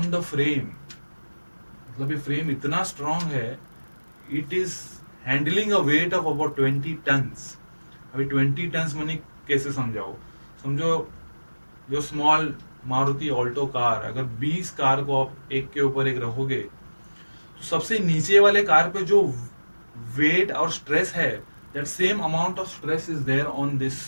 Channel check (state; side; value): inverted; both; correlation -1.00